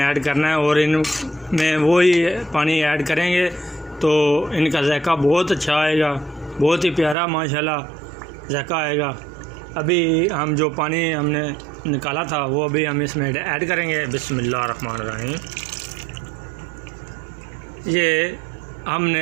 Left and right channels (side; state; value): left; drops out; at 7.2 s